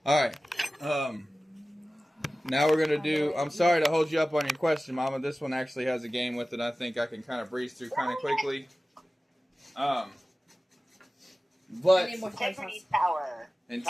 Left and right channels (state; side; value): normal; both; correlation 0.97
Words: All right. Now we're going to do... I'm sorry to hold you up on your question, Mama. This one actually has a game with it. I think I can kind of breeze through kind of quickly. But... Integrity Tower.